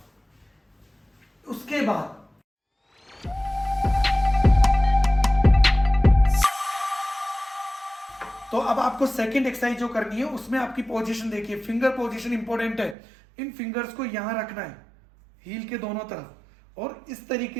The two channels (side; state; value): left; drops out; at 13.0 s